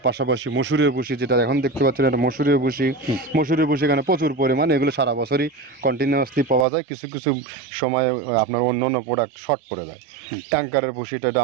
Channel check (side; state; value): left; drops out; at 6.7 s